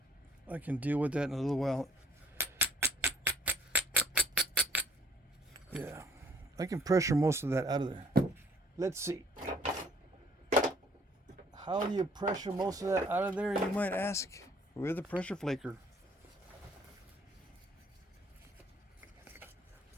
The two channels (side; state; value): both; normal; correlation 0.61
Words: I can deal with that in a little while. Yeah, I can pressure most of that out of there. Let's see. How do you pressure most of that out of there, you might ask? With a pressure flaker.